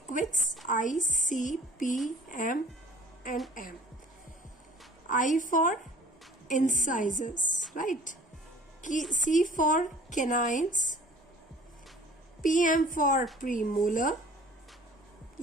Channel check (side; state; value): both; normal; correlation 0.49